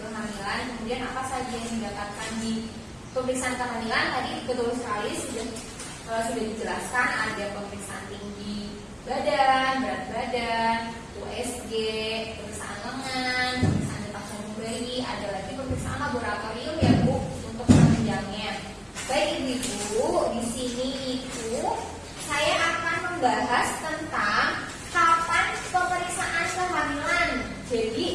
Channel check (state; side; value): identical; both; correlation 1.00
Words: kemudian apa saja yang didapatkan di pemeriksaan kehamilan. Tadi betul sekali sudah dijelaskan, ada pemeriksaan tinggi badan, berat badan, USG, pemeriksaan lengan, pemeriksaan detak jantung bayi, ada lagi pemeriksaan laboratorium ya Bu untuk penunjangnya. Baik Ibu-ibu, di sini itu saya akan membahas tentang kapan pemeriksaan kehamilan.